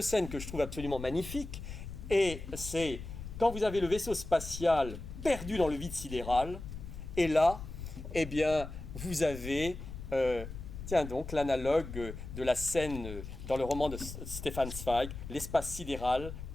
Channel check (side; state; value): left; noise; rumble, 10 dB below the sound